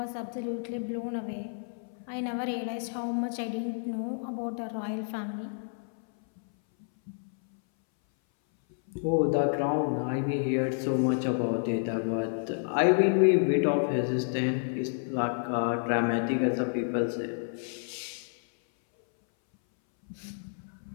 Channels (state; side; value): silent; right; 58 dB below the other